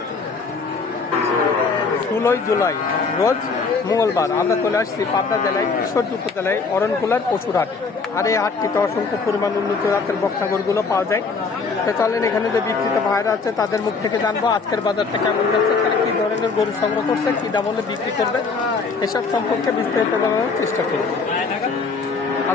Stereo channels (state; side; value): quieter; right; 4.6 dB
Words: 16 জুলাই রোজ মঙ্গলবার আমরা চলে আসছি পাবনা জেলায় ঈশ্বরদী উপজেলায় অরণকুলার পশুর হাট। আর এই হাটটিতে অসংখ্য পরিমাণ উন্নত জাতের বকনাগরগুলো পাওয়া যায়। তো চলেন এখানে যে বিক্রিত ভাইরা আছে তাদের মুখ থেকে জানবো আজকের বাজারটা কেমন যাচ্ছে, তারা কি ধরনের গরু সংগ্রহ করছে, কি দাম হলে বিক্রি করবে, এসব সম্পর্কে বিস্তারিত জানানোর চেষ্টা করব।